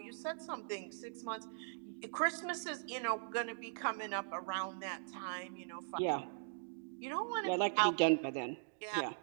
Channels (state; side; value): silent; left; digital silence